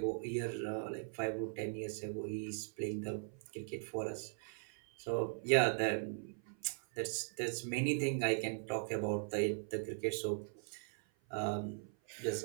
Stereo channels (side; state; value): left; silent; 51 dB below the other